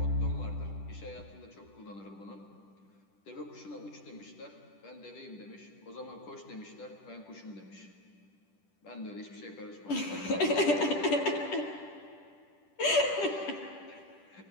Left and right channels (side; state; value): right; late; 10 ms